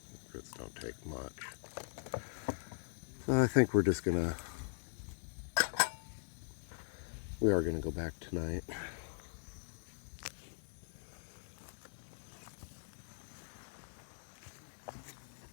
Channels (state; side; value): silent; right; digital silence